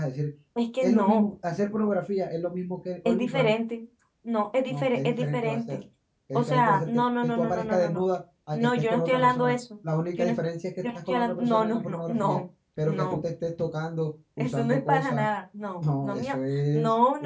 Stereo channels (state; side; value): identical; both; correlation 1.00